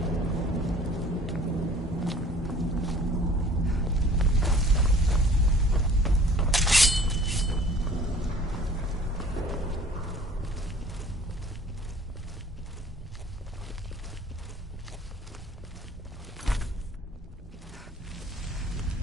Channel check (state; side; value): normal; both; correlation 0.50